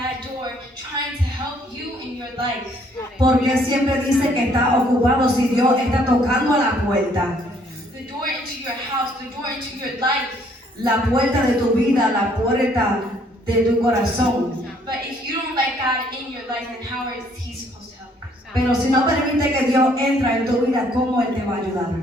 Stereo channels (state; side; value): normal; both; correlation 0.64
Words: door, trying to help you in your life. Porque siempre dice que está ocupado si Dios está tocando a la puerta. The door into your house, the door into your life. La puerta de tu vida, la puerta de tu corazón. But if you don't let God in your life, then how is He supposed to help you? Pero si no permite que Dios entre en tu vida, ¿cómo Él te va a ayudar?